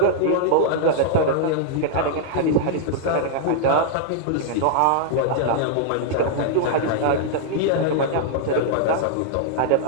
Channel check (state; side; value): different; both; correlation -0.01